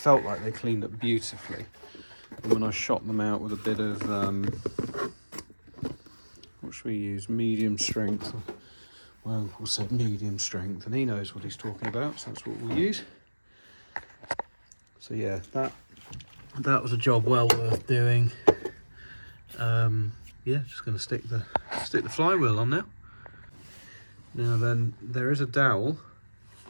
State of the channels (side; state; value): both; inverted; correlation -1.00